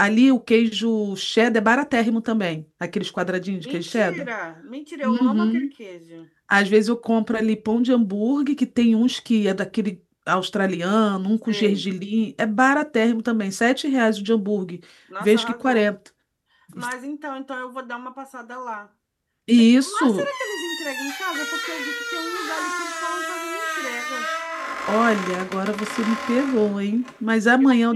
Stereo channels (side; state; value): both; identical; correlation 1.00